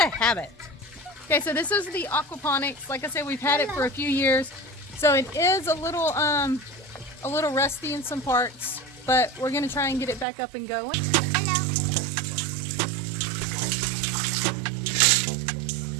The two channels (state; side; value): drops out; left; at 10.2 s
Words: habit. Okay, so this is the aquaponics. Like I said, we've had it for a few years, so it is a little rusty in some parts, but we're gonna try and get it back up and going.